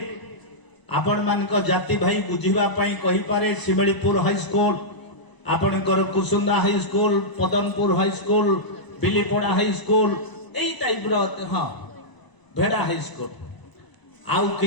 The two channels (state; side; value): late; right; 1.0 ms